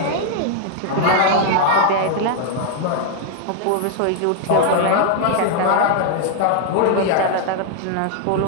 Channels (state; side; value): different; both; correlation 0.00